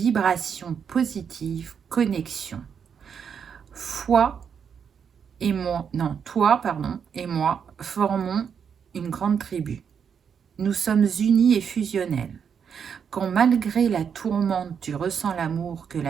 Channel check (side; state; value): left; quieter; 7.2 dB